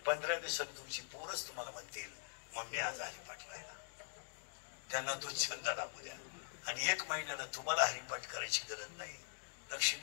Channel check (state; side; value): silent; right; digital silence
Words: 15 दिवसात तुमची पोरच तुम्हाला म्हणतील मम्मी आज हरिपाठ राहिला. त्यांना तो छंद दाखवू द्या. आणि 1 महिन्याला तुम्हाला हरिपाठ करायची गरज नाही.